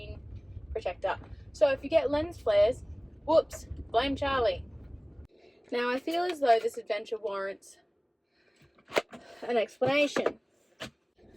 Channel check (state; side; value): identical; both; correlation 1.00